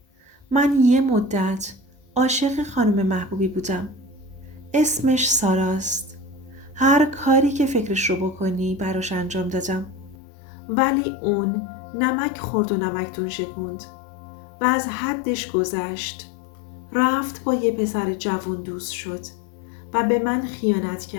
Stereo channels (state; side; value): drops out; right; at 10.2 s